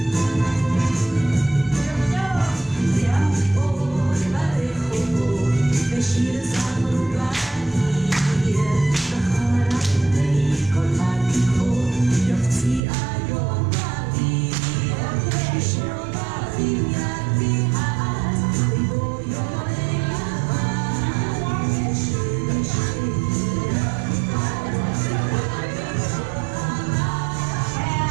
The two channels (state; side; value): drops out; left; at 12.8 s